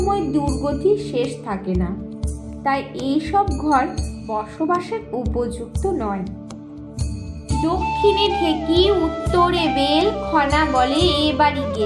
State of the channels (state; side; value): identical; both; correlation 1.00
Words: দুর্গতির শেষ থাকে না, তাই এই সব ঘর বসবাসের উপযুক্ত নয়। দক্ষিণে ঢেকি, উত্তরে বেল, খনা বলে এ বাড়ি